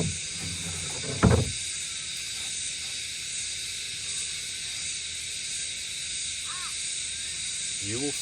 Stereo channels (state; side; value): identical; both; correlation 1.00